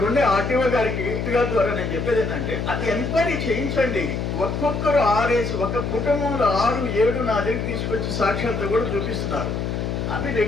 ఉండే ఆర్టీఓ గారికి ద్వారా నేను చెప్పేది ఏంటంటే, అది ఎంక్వైరీ చేయించండి. ఒక్కొక్కరు 6 ఒక కుటుంబంలో 6, 7 నా దగ్గరికి తీసుకొచ్చి సాక్ష్యాలతో కూడా చూపిస్తున్నారు. అవి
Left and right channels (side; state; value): left; noise; hum, 2 dB below the sound